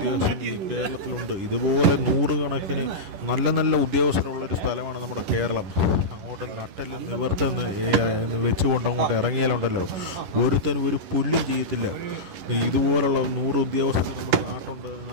ഈ കേരളത്തിലുണ്ട്. ഇതുപോലെ നൂറുകണക്കിന് നല്ല നല്ല ഉദ്യോഗസ്ഥരുള്ളൊരു സ്ഥലമാണ് നമ്മുടെ കേരളം. അങ്ങോട്ട് നട്ടല് നിവർത്തുന്ന വെച്ചുകൊണ്ട് അങ്ങോട്ട് ഇറങ്ങിയാലുണ്ടല്ലോ ഒരുത്തനും ഒരു പുല്ലും ചെയ്യത്തില്ല. ഇതുപോലുള്ള 100 ഉദ്യോഗസ്ഥർ നമ്മുടെ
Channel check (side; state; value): left; late; 11 ms